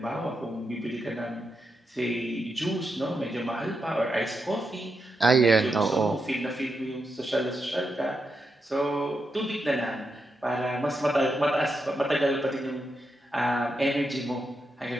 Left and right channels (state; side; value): normal; both; correlation 0.85